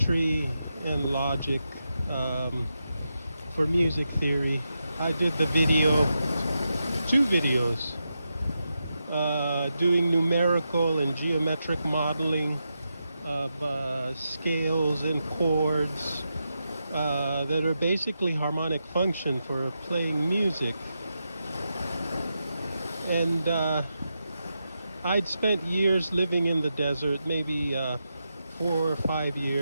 and logic for music theory. I did the video, two videos, doing numerical and geometric modeling of scales and chords that are basically harmonic function for playing music. And I'd spent years living in the desert, maybe 4 or 5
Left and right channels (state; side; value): inverted; both; correlation -0.87